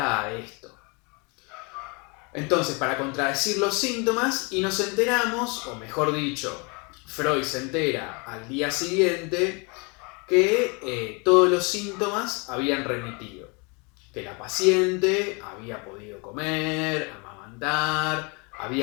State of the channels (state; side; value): quieter; right; 31.0 dB